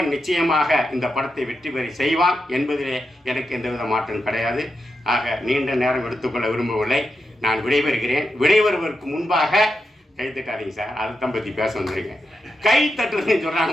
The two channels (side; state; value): both; normal; correlation 0.87